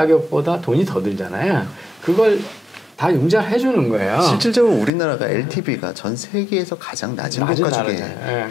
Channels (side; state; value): right; drops out; at 4.9 s